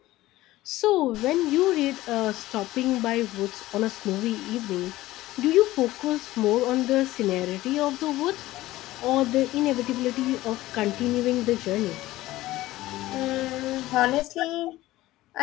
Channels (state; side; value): quieter; right; 16.8 dB